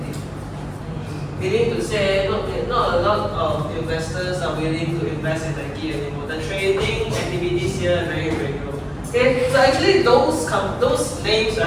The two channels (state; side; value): identical; both; correlation 1.00